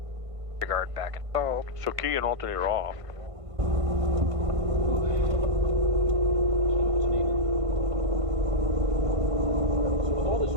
Guard back installed. So key and alternator off. So with all this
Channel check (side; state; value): left; late; 1.5 ms